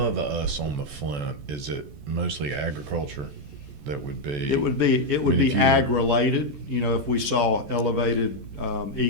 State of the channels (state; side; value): late; left; 14 ms